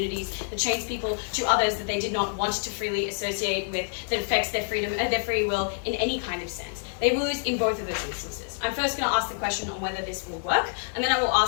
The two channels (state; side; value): silent; right; digital silence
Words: that chains people to others that they did not want to freely associate with, that affects their freedom and their free will in any kind of sense. They will lose in both of those instances. I'm first going to ask the question on whether this will work, and then I will